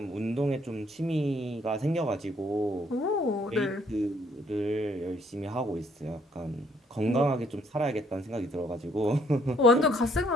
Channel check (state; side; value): normal; both; correlation 0.66